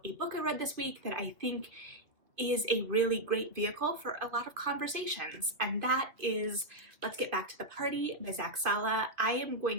a book I read this week that I think is a really great vehicle for a lot of conversations, and that is Let's Get Back to the Party by Zach Sala. I am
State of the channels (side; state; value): left; late; 2.3 ms